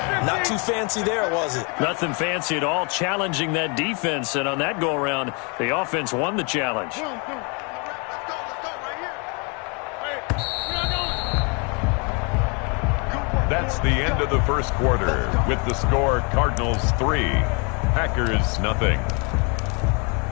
Not too fancy there, was it? Nothing fancy at all, challenging that defense. And on that go-around, the offense won the challenge. That's the end of the first quarter with the score Cardinals 3, Packers nothing.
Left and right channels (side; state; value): right; quieter; 33.4 dB